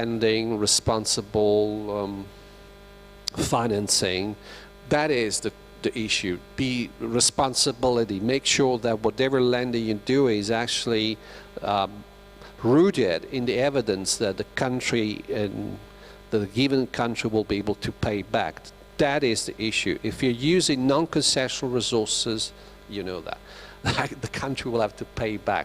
responsible financing. That is the issue. Be responsibility. Make sure that whatever lending you do is actually rooted in the evidence that the country and the given country will be able to pay back. That is the issue. If you're using non-concessional resources, you know that the country will have to pay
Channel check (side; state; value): both; identical; correlation 1.00